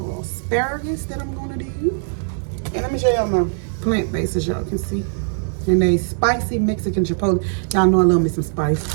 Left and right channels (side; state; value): left; silent; digital silence